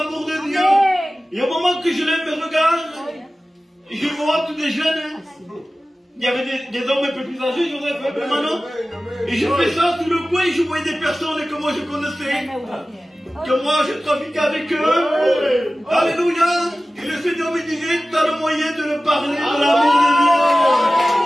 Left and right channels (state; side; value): normal; both; correlation 0.96